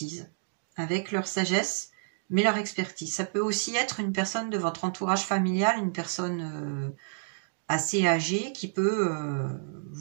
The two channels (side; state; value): left; silent; digital silence